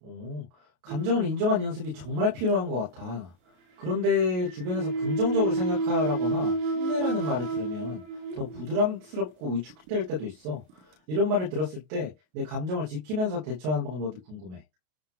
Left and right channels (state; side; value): late; left; 33 ms